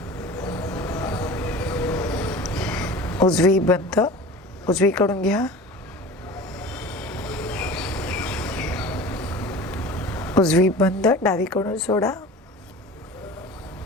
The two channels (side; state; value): both; normal; correlation 0.37